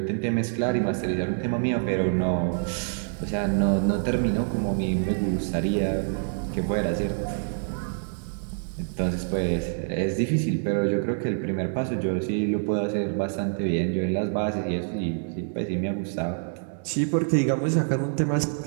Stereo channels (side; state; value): left; silent; 61 dB below the other